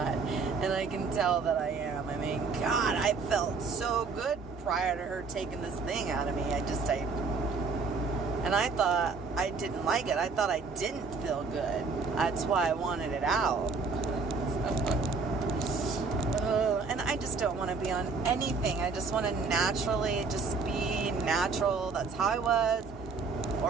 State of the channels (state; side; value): quieter; left; 4.6 dB